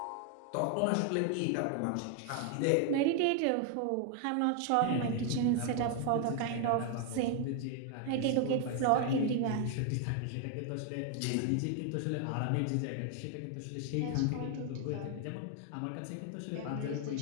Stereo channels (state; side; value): different; both; correlation 0.00